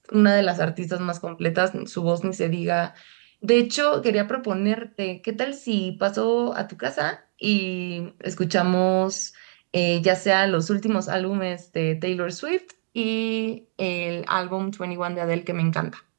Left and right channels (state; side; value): silent; left; digital silence